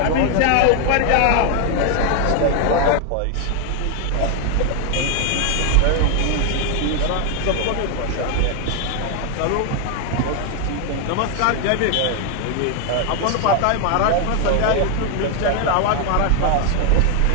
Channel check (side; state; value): both; different; correlation 0.00